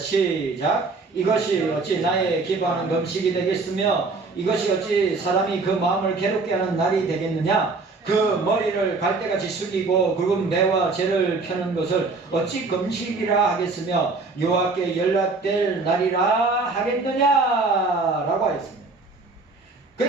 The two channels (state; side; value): quieter; left; 3.8 dB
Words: 이것이 어찌 나의 기뻐하는 금식이 되겠으며 이것이 어찌 사람이 그 마음을 괴롭게 하는 날이 되겠느냐. 그 머리를 갈대같이 숙이고 굵은 배와 재를 펴는 것을 어찌 금식이라 하겠으며 여호와께 연락될 날이라 하겠느냐 라고 하였습니다.